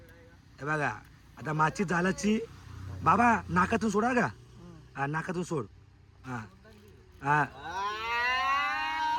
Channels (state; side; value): identical; both; correlation 1.00